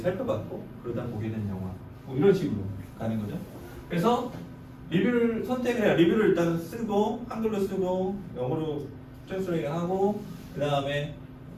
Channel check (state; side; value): identical; both; correlation 1.00